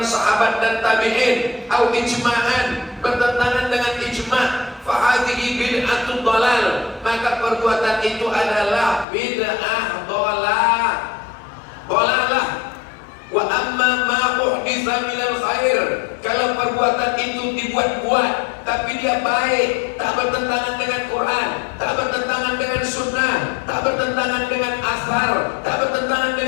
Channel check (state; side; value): drops out; right; at 9.1 s